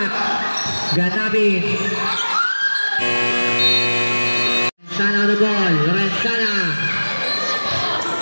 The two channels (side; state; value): both; inverted; correlation -1.00